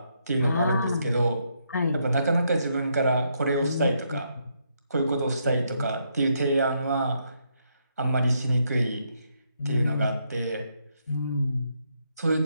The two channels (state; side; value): inverted; both; correlation -0.77